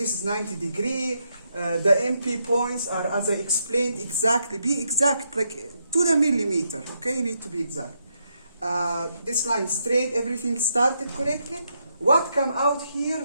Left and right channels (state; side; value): inverted; both; correlation -0.79